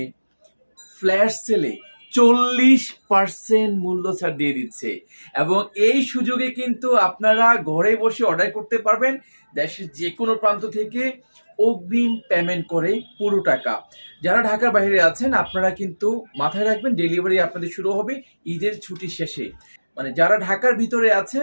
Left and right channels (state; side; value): inverted; both; correlation -1.00